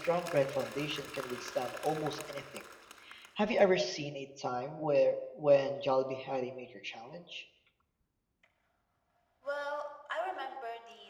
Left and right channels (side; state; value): both; identical; correlation 1.00